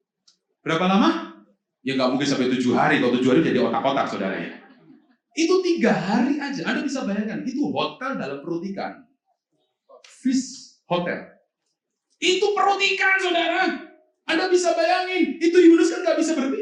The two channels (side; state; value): both; identical; correlation 1.00